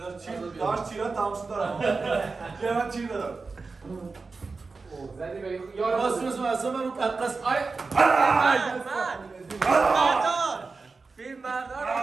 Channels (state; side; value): quieter; left; 4.2 dB